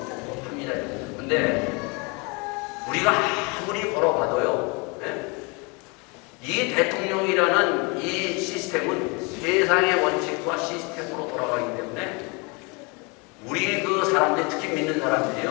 합니다. 근데 우리가 아무리 걸어봐도요, 이 대통령이라는 이 시스템은 세상의 원칙과 시스템으로 돌아가기 때문에 우리 그 사람들, 특히 믿는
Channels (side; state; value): right; quieter; 30.0 dB